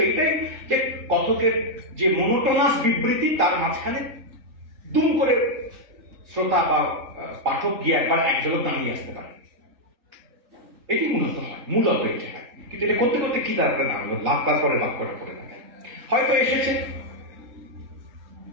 এইটাই যে কথকের যে মনোটোনাস বিবৃতি, তার মাঝখানে দুম করে শ্রোতা বা পাঠক গিয়ে একবার এক ঝলক দাঁড়িয়ে আসতে পারে। এটি মূলত হয়, মূলত এটি হয়। কিন্তু এটা করতে করতে কি তার একটা নাম হলো, লাভ তারপরে লাভ করে পড়ে থাকে। হয়তো এসেছে,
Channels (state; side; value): late; left; 3.8 ms